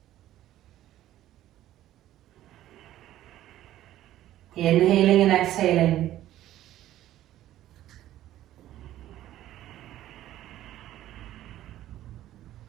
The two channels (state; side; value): quieter; left; 13.4 dB